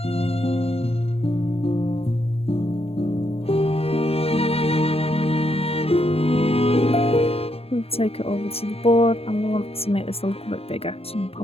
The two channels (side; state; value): right; late; 0.29 ms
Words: We'll take it over to the board and we want to make this a little bit bigger. So I'm